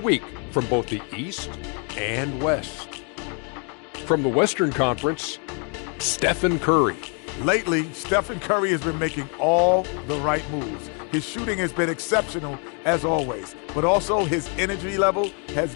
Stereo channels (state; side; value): quieter; right; 38.1 dB